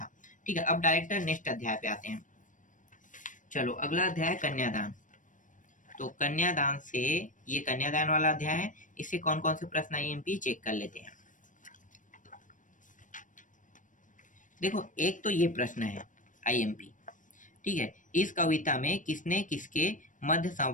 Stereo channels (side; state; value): right; late; 0.37 ms